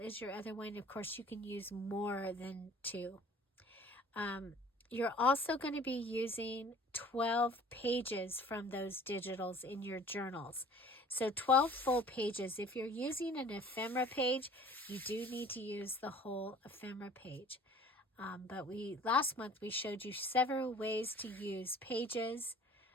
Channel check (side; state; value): both; normal; correlation 0.49